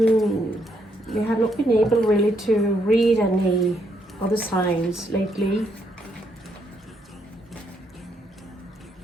able really to read any other signs lately,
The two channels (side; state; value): both; normal; correlation 0.75